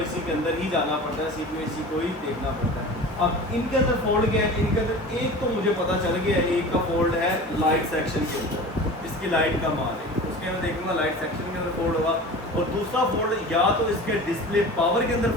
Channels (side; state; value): both; normal; correlation 0.36